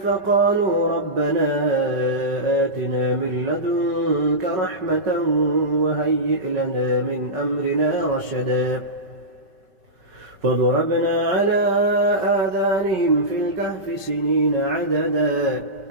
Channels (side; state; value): left; late; 5.3 ms